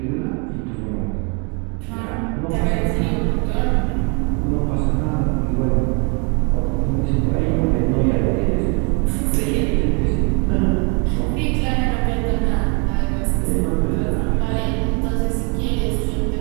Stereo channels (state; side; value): quieter; left; 35.1 dB